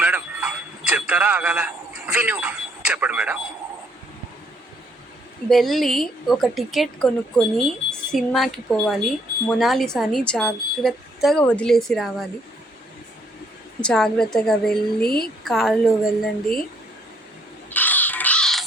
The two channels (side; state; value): both; normal; correlation 0.66